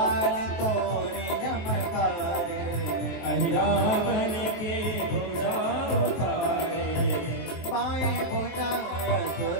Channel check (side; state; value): right; late; 24 ms